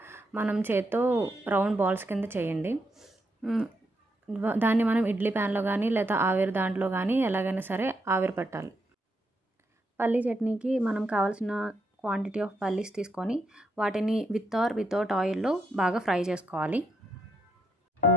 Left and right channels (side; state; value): both; normal; correlation 0.79